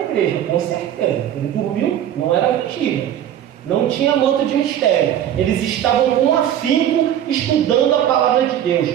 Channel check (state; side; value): quieter; left; 10.7 dB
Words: com certeza. Ele dormiu, não era mentira. Não tinha manto de mistério. Eles estavam com afinco estudando a palavra de